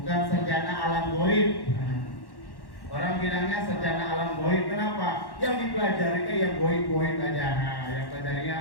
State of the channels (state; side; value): late; right; 1.1 ms